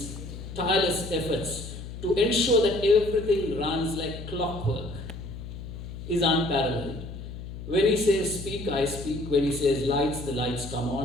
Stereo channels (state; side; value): noise; left; hum, 10 dB below the sound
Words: tireless efforts to ensure that everything runs like clockwork is unparalleled. When he says speak, I speak. When he says lights, the lights come